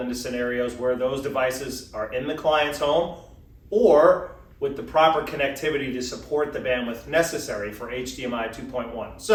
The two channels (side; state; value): both; identical; correlation 1.00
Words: scenarios where those devices are in the client's home or with the proper connectivity to support the bandwidth necessary for HDMI 2.1.